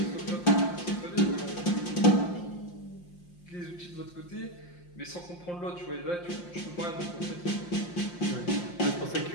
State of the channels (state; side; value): late; right; 5.7 ms